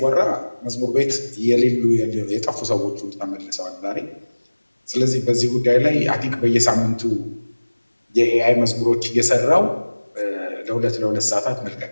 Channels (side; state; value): both; inverted; correlation -1.00